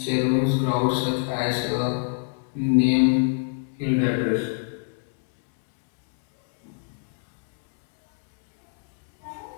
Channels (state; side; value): silent; right; digital silence